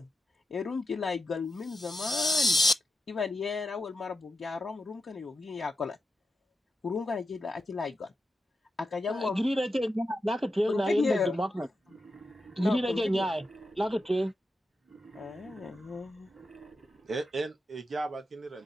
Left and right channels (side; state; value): both; normal; correlation 0.89